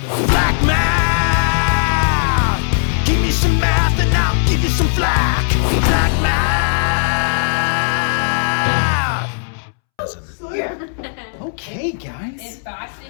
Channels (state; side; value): silent; right; 68 dB below the other